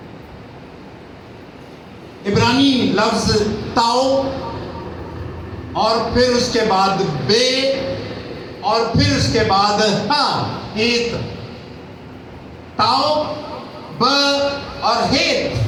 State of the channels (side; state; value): both; identical; correlation 1.00